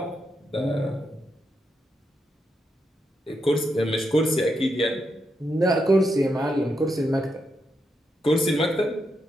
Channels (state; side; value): normal; both; correlation 0.83